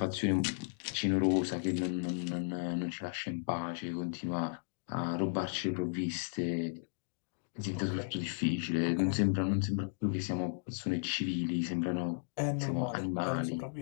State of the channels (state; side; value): silent; right; digital silence